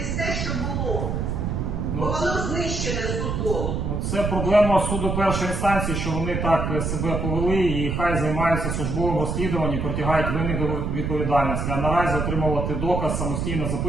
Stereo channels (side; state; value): right; noise; rumble, 1 dB below the sound